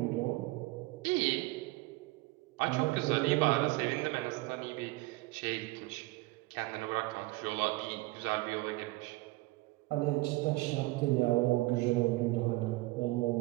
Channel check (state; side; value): quieter; left; 21.2 dB